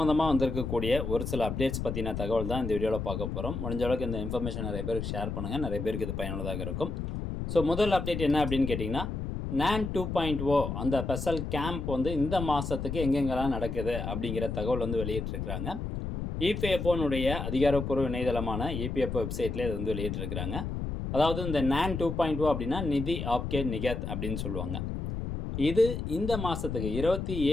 வந்திருக்கக்கூடிய ஒரு சில அப்டேட்ஸ் பற்றின தகவல் தான் இந்த வீடியோவில் பார்க்க போகிறோம். முடிஞ்ச அளவுக்கு இந்த இன்ஃபர்மேஷன் நிறைய பேருக்கு ஷேர் பண்ணுங்கள், நிறைய பேருக்கு இது பயனுள்ளதாக இருக்கும். ஸோ முதல் அப்டேட் என்ன அப்படின்னு கேட்டிங்கன்னா, NAN 2.0 அந்த ஸ்பெஷல் கேம்ப் வந்து இந்த மாதத்துக்கு எங்கெங்கெல்லாம் நடக்குது அப்படிங்கிற தகவல் வந்து வெளியிட்டிருக்கிறாங்க. இபிஎஃப்ஓனுடைய அதிகாரப்பூர்வ இணையதளமான இபிஎஃப்ஓ வெப்சைட்லேயே இது வந்து வெளியிட்டிருக்கிறாங்க. அதாவது இந்த NAN 2.0 அப்படின்னா நிதி ஆப்கே நிகத் அப்படின்னு சொல்லுவாங்க. இது இந்த மாதத்துக்கு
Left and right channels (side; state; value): left; noise; rumble, 4 dB below the sound